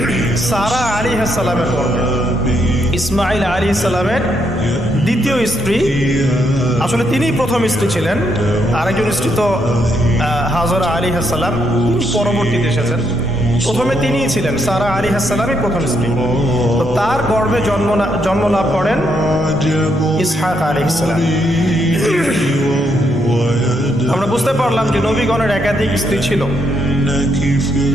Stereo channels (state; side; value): normal; both; correlation 0.76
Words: সারা আলাইহিস সালামের গর্ভে। ইসমাইল আলাইহিস সালামের দ্বিতীয় স্ত্রী, আসলে তিনিই প্রথম স্ত্রী ছিলেন। আরেকজন স্ত্রী তো হাজরা আলাইহিস সালাম, তিনি পরবর্তীতে এসেছেন। প্রথমে তিনিই ছিলেন, সারা আলাইহিস সালামই প্রথম স্ত্রী। তো তার গর্ভে জন্ম লাভ করেন ইসহাক আলাইহিস সালাম। আমরা বুঝতে পারলাম যে নবীগণের একাধিক স্ত্রী ছিল।